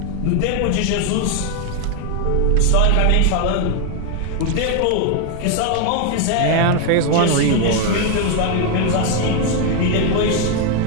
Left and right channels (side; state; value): both; different; correlation 0.01